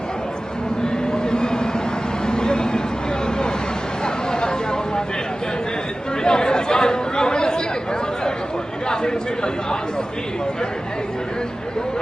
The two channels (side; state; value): both; normal; correlation 0.96